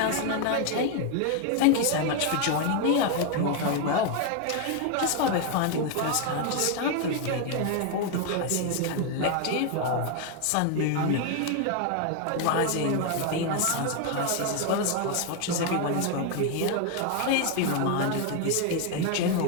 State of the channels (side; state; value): both; different; correlation 0.01